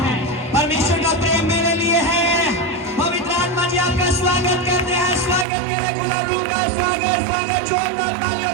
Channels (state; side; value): drops out; left; at 5.5 s